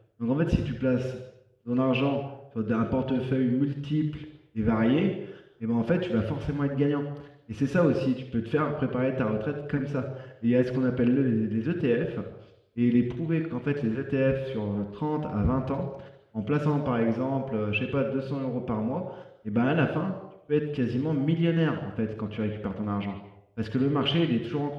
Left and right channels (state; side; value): identical; both; correlation 1.00